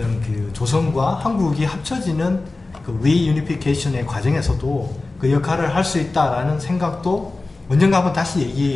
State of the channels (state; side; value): quieter; right; 3.3 dB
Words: 그 조선과 한국이 합쳐지는 그 리유니피케이션의 과정에서도 그 역할을 할 수 있다라는 생각도 언젠가 한번 다시